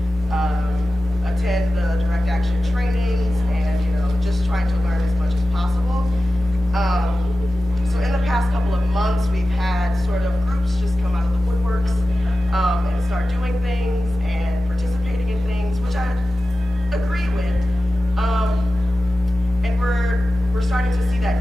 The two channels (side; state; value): both; normal; correlation 0.95